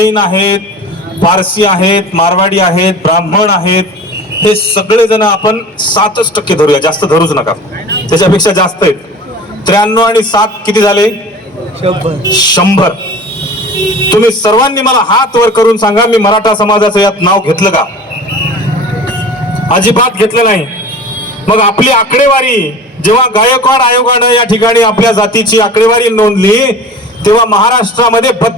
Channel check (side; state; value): both; normal; correlation 0.39